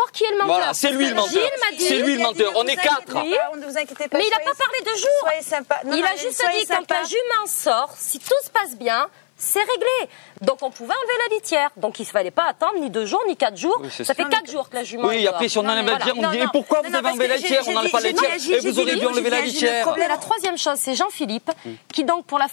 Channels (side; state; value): right; silent; 56 dB below the other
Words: qui est le menteur. Voilà, c'est lui le menteur. Gilles m'a dit. C'est lui le menteur. On est 4. Oui. Ne vous inquiétez pas. Mais il n'a pas parlé de jour. Soyez sympa. Il a juste dit quand un jument sort, si tout se passe bien, c'est réglé. Donc on pouvait enlever la litière. Donc il ne fallait pas attendre ni 2 jours, ni 4 jours. Oui, c'est ça ça. fait 4 jours que la jument Oui, est après, si on dehors. enlève la litière, on me dit, et pourquoi vous avez enlevé la litière? On n'enlève pas la litière. Et vous auriez dû enlever la litière. Et la troisième chose, c'est Jean-Philippe, qui donc pour la